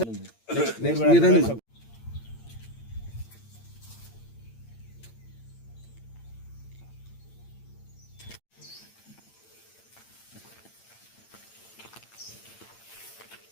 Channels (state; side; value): late; right; 8.8 ms